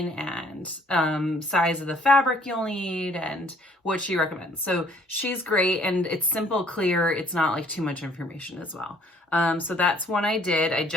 and size of the fabric you'll need and what she recommends. So she's great, and it's simple, clear. It's not like too much information as well. So that's one I did. I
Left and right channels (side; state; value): both; normal; correlation 0.60